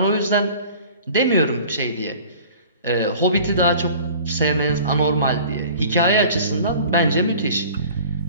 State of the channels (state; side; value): inverted; both; correlation -0.45